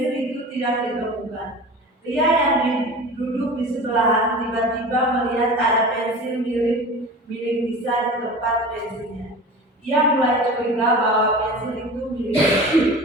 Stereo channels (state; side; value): normal; both; correlation 0.35